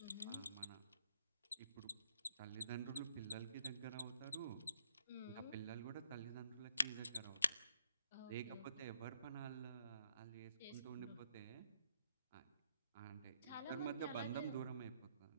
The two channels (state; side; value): inverted; both; correlation -0.72